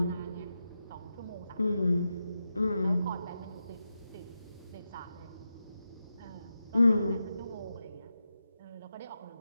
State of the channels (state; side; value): inverted; both; correlation -0.89